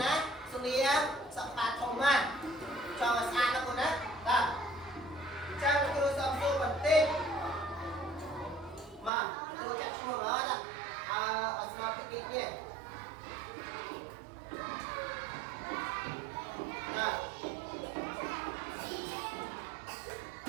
ណាសុនីសបាធំណាចង់ស្អាតណាគូណាបាទចាំគ្រូសំសួរបន្តិចមកគ្រូចាក់ឈ្មោះអត់អស្មារតីនេះបាទ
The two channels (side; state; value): left; drops out; at 9.1 s